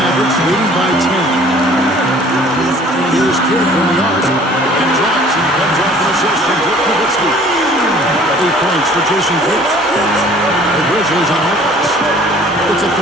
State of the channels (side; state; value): both; normal; correlation 0.52